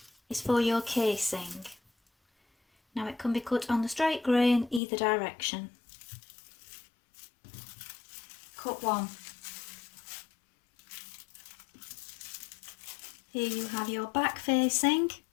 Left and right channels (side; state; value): right; drops out; at 4.8 s